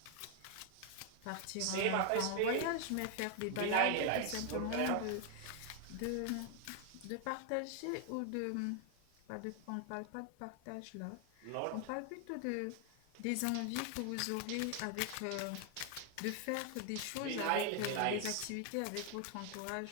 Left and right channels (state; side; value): different; both; correlation 0.00